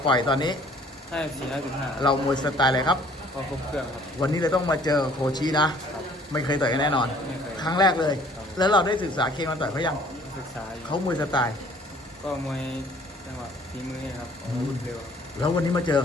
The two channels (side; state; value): both; normal; correlation 0.56